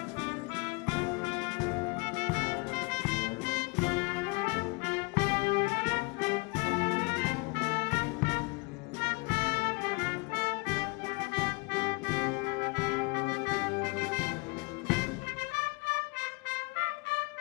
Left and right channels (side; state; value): right; quieter; 28.3 dB